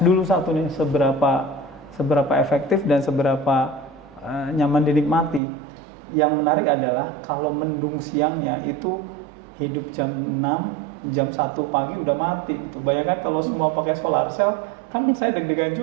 dulu satu nih, seberapa efektif dan seberapa nyaman dinikmati. Yang menarik adalah kalau mendung siangnya itu hidup jam 6, jam 1 pagi udah mati gitu. Bayangkan kalau semua pakai solar cell, kan saya deg-degan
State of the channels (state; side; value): drops out; left; at 5.4 s